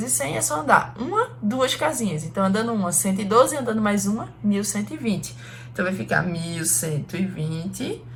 100 é só andar duas casinhas. Então, andando uma, 112, andando mais uma, 1120. Então, vai ficar 1120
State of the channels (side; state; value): both; identical; correlation 1.00